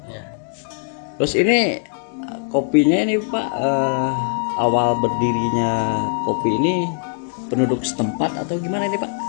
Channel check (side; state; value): right; silent; 65 dB below the other